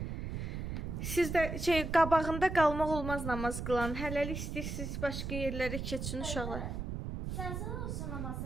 Siz də qabağında qalmaq olmaz namaz qılan. Hələlik istəyirsiniz başqa yerlərə keçin uşaqlar. Zəlzələ olsa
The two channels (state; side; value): noise; right; rumble, 4 dB below the sound